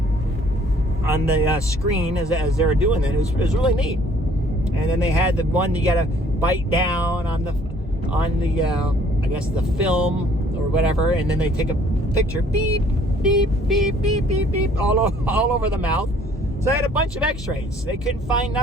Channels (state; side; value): normal; both; correlation 0.59